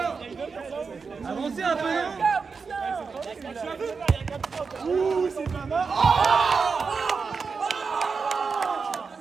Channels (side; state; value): left; quieter; 5.1 dB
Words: Avancez un peu, non?